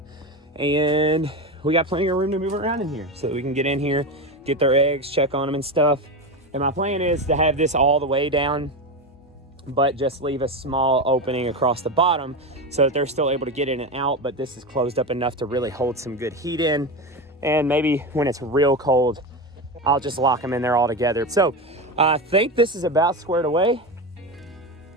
And we got plenty of room to move around in here so that we can get in here, get their eggs, check on them and stuff. And my plan is to have this all the way down, but just leave a small opening across the bottom so that they're still able to get in and out, but this is closed up enough to really hold some good heat in. And maybe when it's real cold, I'll just lock them in there all together. So I think this is about squared away.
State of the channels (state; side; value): normal; both; correlation 0.19